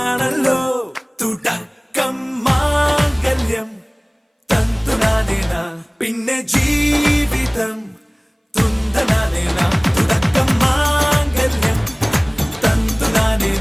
തുടക്കം മാംഗല്യം തന്തുനാനേന, പിന്നെ ജീവിതം തുന്തനാനേന. തുടക്കം മാംഗല്യം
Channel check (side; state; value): both; identical; correlation 1.00